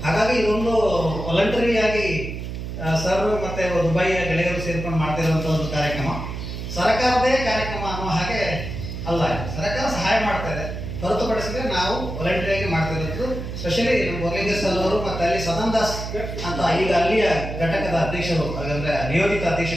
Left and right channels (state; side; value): noise; right; hum, 7 dB below the sound